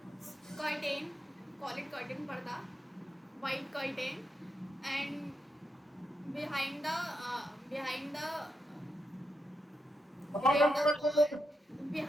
curtain, call it curtain, parda, white curtain. And behind the behind the wall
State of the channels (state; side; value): normal; both; correlation 0.84